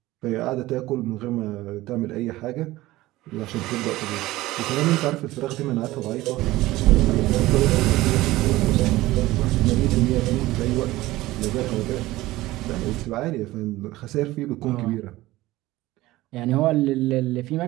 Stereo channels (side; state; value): left; quieter; 17.7 dB